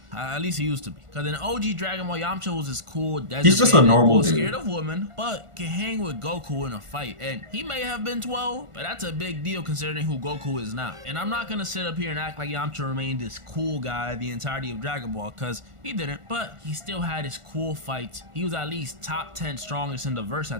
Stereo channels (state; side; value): late; left; 1.5 ms